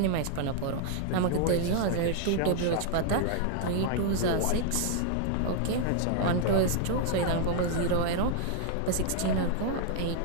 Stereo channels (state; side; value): different; both; correlation 0.00